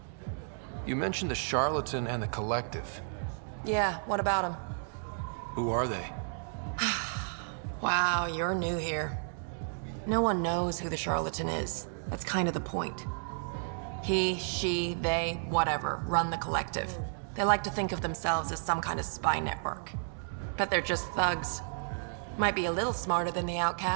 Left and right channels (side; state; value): left; silent; digital silence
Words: You mentioned the Charlatan and the Collective. Yeah, what about them? Who are they? Wow, you're new here. No one knows who the Charlatan is. That's kind of the point. He, she, they, whatever, run the Collective. They like to think of themselves as some kind of spy network. But they're just thugs. Might be a little smarter than the